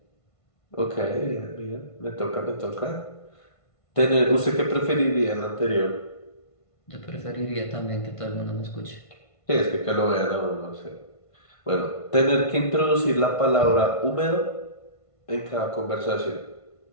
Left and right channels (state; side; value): late; right; 1.5 ms